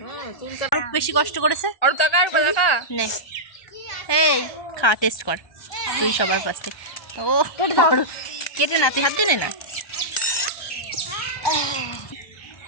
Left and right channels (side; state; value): right; late; 1.2 ms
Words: আরো বেশি কষ্ট করেছে। আর কাকা নে, এই খা, টেস্ট কর তুই সবার ফার্স্টে। ও কেটে না, তুই হাত দিয়ে নে না।